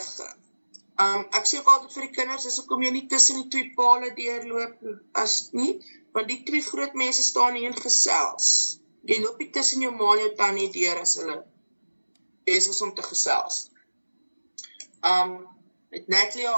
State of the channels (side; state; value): both; inverted; correlation -1.00